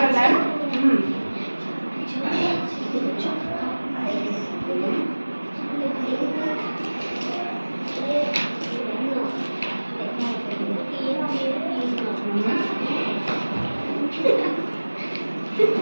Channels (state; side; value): inverted; both; correlation -1.00